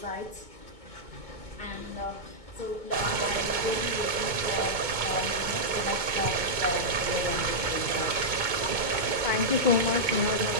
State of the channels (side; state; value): left; late; 2.2 ms